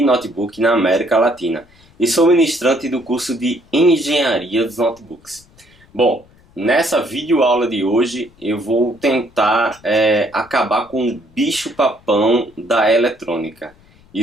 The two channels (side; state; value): left; noise; rumble, 29 dB below the sound